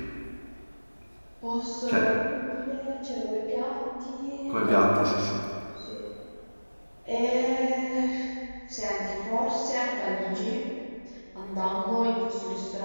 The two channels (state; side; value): inverted; both; correlation -1.00